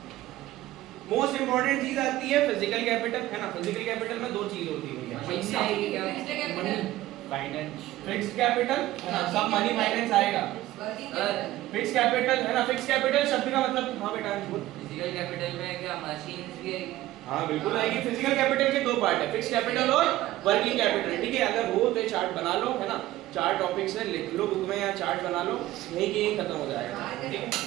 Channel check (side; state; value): left; quieter; 15.8 dB